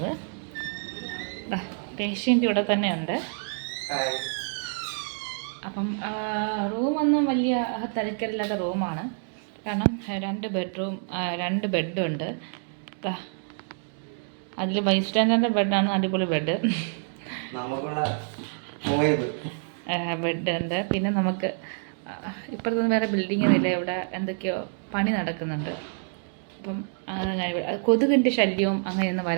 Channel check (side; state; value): left; silent; 60 dB below the other